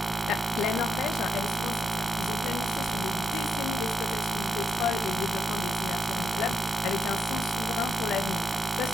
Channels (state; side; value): normal; both; correlation 0.81